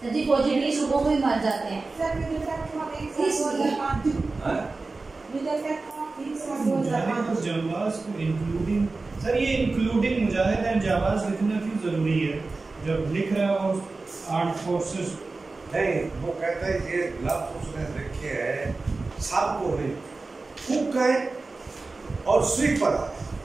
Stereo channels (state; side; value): quieter; left; 3.7 dB